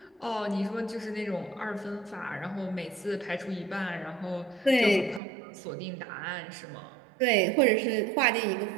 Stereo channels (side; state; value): left; drops out; at 5.2 s